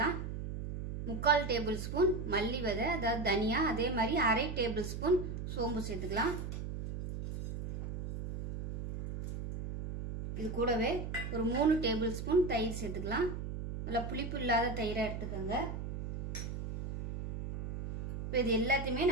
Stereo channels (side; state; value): right; noise; hum, 6 dB below the sound